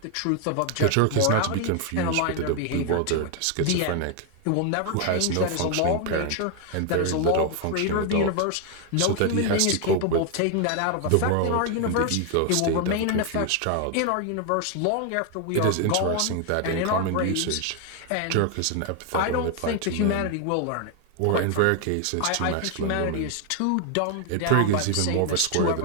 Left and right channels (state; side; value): different; both; correlation 0.00